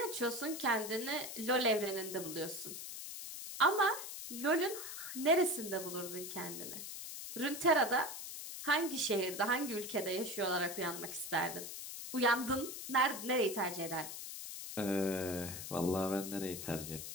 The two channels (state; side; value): noise; left; hiss, 8 dB below the sound